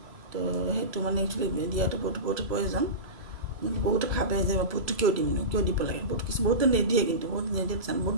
তো হেতু মানে एक्चुअली দিয়াটো বহুত প্রয়োজন বহুত ভাবে যে ফটো কিয় দিব লাগে বহুত নিদিয়ে কিন্তু বহুত নিদিয়ে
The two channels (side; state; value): left; late; 3.0 ms